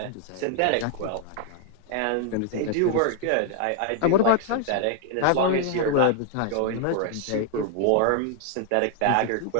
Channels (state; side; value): different; both; correlation 0.00